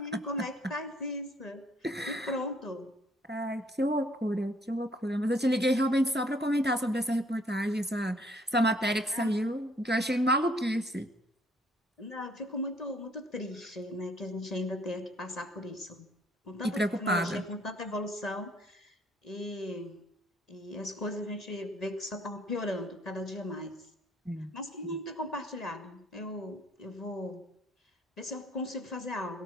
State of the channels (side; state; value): both; normal; correlation 0.62